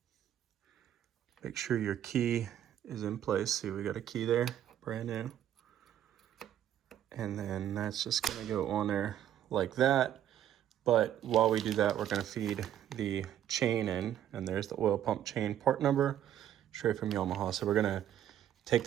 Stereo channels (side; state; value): left; quieter; 11.0 dB